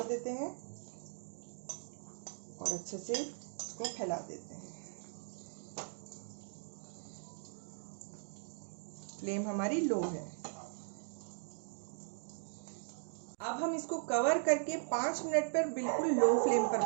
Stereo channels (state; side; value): silent; left; digital silence